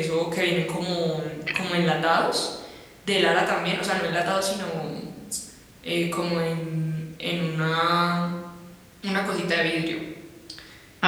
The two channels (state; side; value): identical; both; correlation 1.00